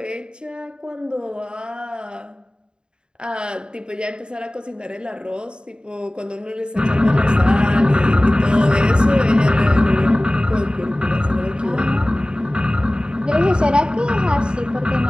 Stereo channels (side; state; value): left; late; 0.050 ms